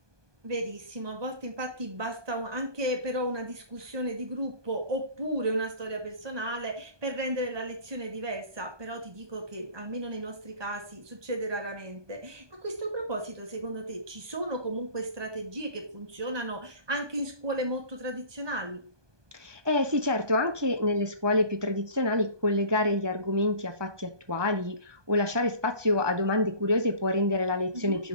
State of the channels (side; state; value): left; late; 1.2 ms